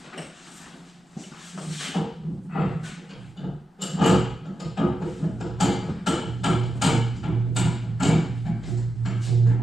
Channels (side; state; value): both; normal; correlation 0.89